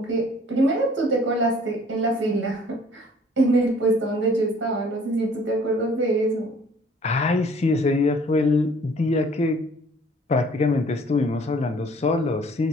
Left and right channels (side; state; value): both; normal; correlation 0.55